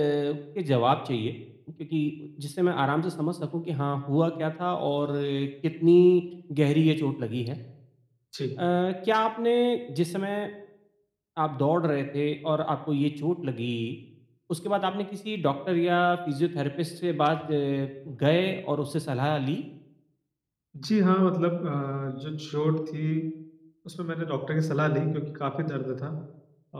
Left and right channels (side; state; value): both; identical; correlation 1.00